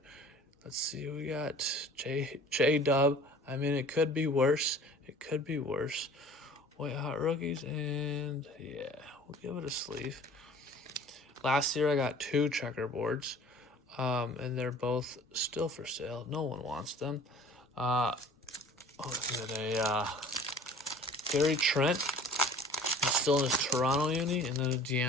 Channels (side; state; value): both; normal; correlation 0.47